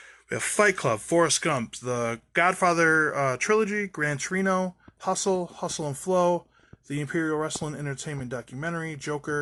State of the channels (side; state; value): both; identical; correlation 1.00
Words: We have Fight Club, Forrest Gump, The Godfather Trilogy, Gran Torino, Hustle and Flow, The Imperial Wrestling Entertainment Documentary,